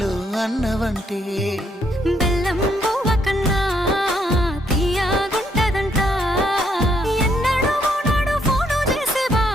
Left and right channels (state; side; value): normal; both; correlation 0.72